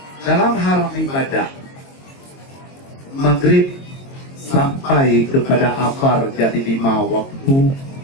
dalam hal ibadah, maghrib sampai kepada asar jadi 5 waktu,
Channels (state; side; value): late; right; 22 ms